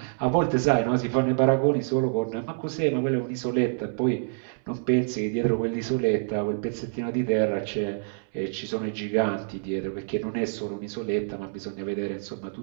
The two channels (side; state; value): left; silent; 60 dB below the other